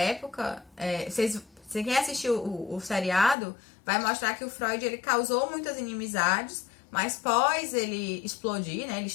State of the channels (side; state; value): right; drops out; at 3.4 s